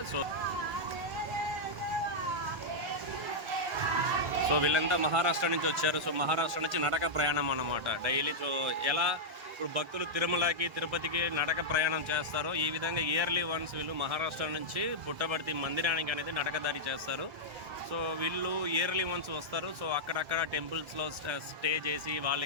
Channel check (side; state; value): left; late; 1.7 ms